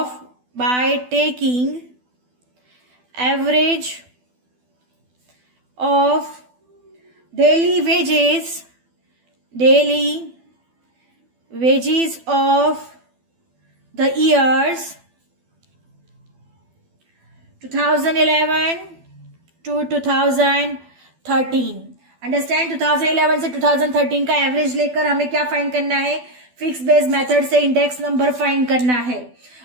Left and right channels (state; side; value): late; left; 12 ms